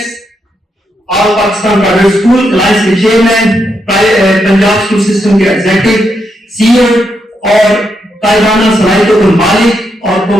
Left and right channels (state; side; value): normal; both; correlation 0.81